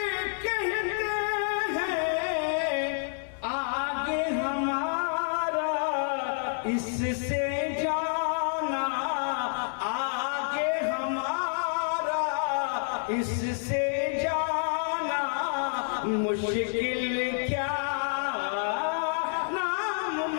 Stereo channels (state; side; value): silent; right; 59 dB below the other